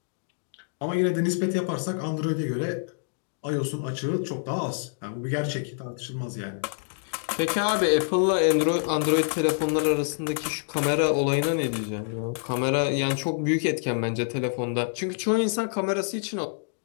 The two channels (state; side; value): silent; right; digital silence